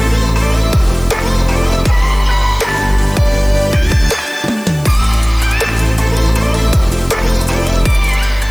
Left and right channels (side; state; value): left; noise; hiss, 21 dB below the sound